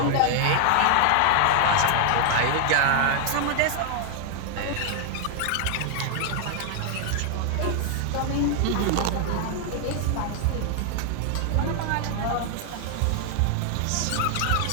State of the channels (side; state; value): both; different; correlation 0.00